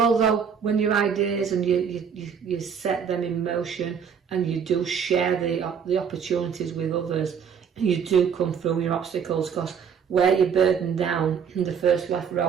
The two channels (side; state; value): left; quieter; 7.1 dB